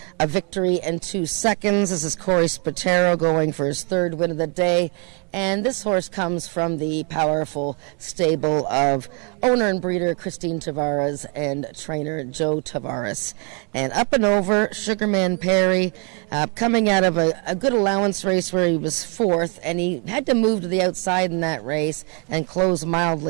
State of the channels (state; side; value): quieter; left; 35.7 dB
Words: a victory in 2 seconds. This is Corey Spatero going for his 3rd win of the day. And this horse comes from the powerful stable of owner and breeder Christine Tavares and trainer Joe Tavares. And Up and Over, Sugarman Perry, coming out of a good allowance race where he was 4th, and he had to move to the outside in that race and close